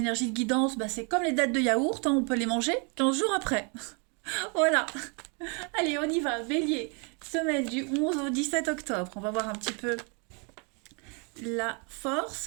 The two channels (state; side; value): quieter; left; 35.4 dB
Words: de guidance, c'est comme les dattes de yaourt, hein, on peut les manger 15 jours après. Voilà, allez on y va, bélier, semaine du 11 au 17 octobre, on va voir un petit peu la force.